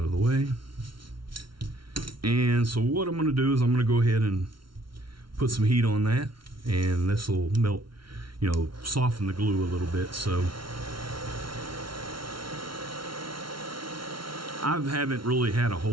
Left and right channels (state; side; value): late; left; 0.74 ms